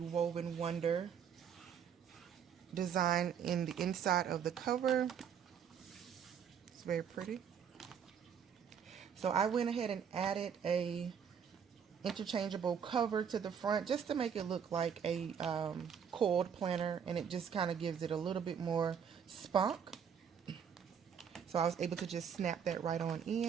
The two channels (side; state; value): left; quieter; 7.7 dB